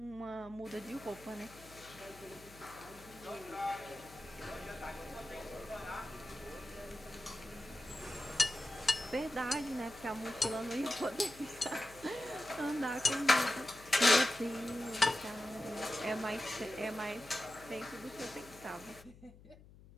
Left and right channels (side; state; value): left; noise; hum, 20 dB below the sound